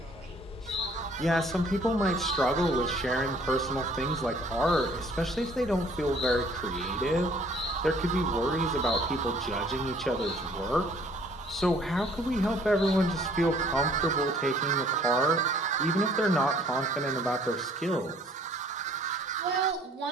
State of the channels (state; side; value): normal; both; correlation 0.57